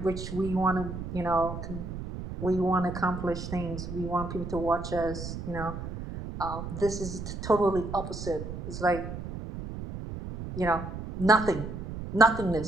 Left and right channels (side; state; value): right; noise; rumble, 8 dB below the sound